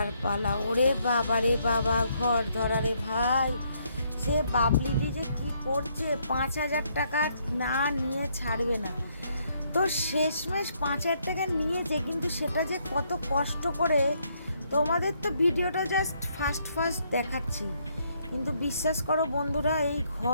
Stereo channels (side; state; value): both; inverted; correlation -0.72